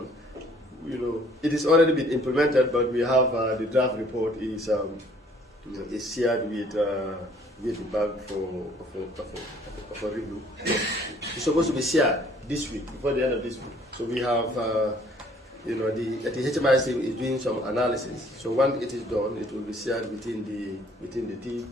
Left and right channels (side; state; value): both; normal; correlation 0.59